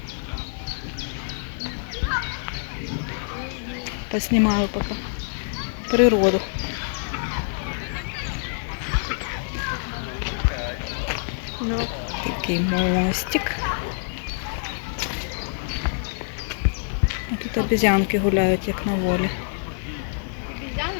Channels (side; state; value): right; silent; digital silence